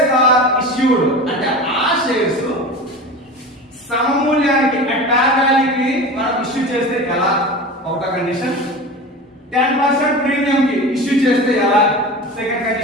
are issued అంటే ఆ షేర్స్ సమమూల్యానికి అట్ వాల్యూకి మనం ఇష్యూ చేస్తే ఎలా, ఒకట కండిషన్. 10% ప్రీమియం కి ఇష్యూ చేస్తే ఎలా, second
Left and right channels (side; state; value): both; normal; correlation 0.32